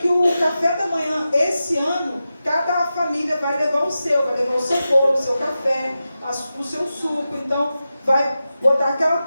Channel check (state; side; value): inverted; both; correlation -0.92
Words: o café da manhã, esse ano, cada família vai levar o seu bolo, o seu café, o seu suco. Então, vai botar aquela